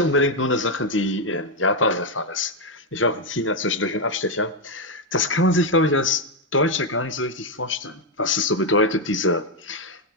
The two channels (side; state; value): both; normal; correlation 0.02